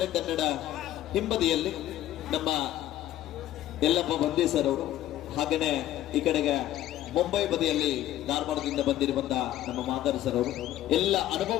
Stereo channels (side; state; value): right; quieter; 13.5 dB